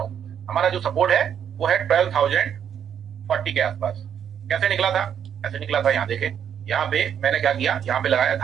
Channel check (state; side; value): quieter; left; 8.7 dB